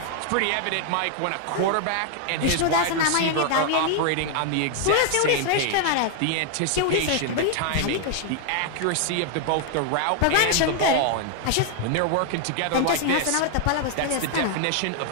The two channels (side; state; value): both; different; correlation 0.00